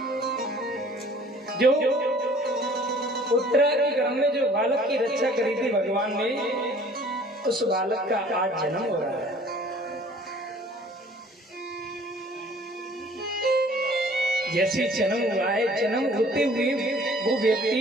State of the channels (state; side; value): normal; both; correlation 0.53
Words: जो उत्तरा के गर्भ में जो बालक की रक्षा करी थी भगवान ने, उस बालक का आज जन्म हो रहा है। जैसे जन्म हुआ है, जन्म होते हुए वो व्यक्ति